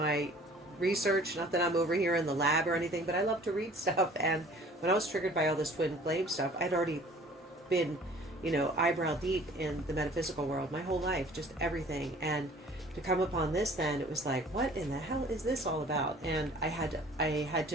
research, not that I'm over here in the lab or anything, but I love to read stuff. And when I was triggered by all this twin flame stuff, I'd already been, eyebrow deep in the metaphysical world my whole life, just everything. And to come upon this, then it was like, what in the hell is this all about? And I had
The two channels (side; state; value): both; normal; correlation 0.51